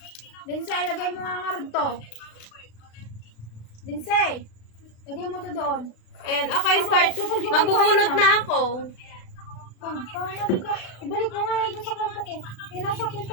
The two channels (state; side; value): late; right; 36 ms